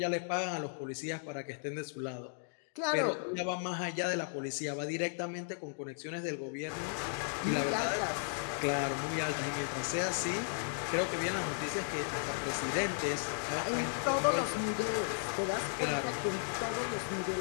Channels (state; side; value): silent; right; digital silence